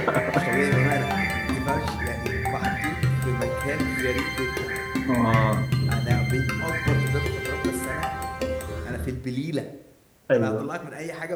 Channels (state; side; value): identical; both; correlation 1.00